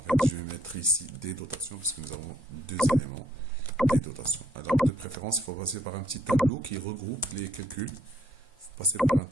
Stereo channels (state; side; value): normal; both; correlation 0.68